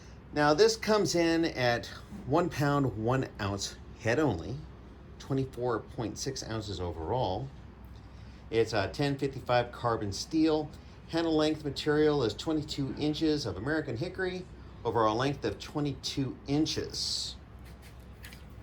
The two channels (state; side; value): identical; both; correlation 1.00